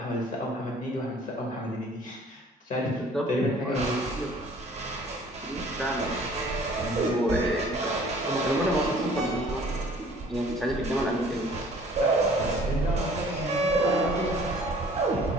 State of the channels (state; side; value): normal; both; correlation 0.53